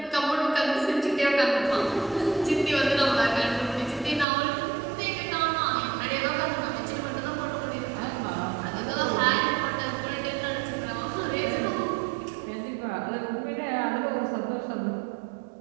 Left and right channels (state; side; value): drops out; left; at 4.2 s